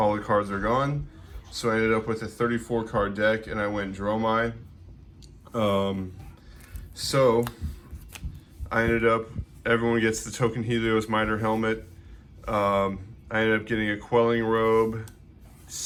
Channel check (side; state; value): both; identical; correlation 1.00